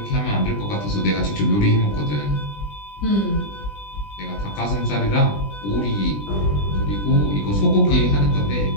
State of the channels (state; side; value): late; right; 20 ms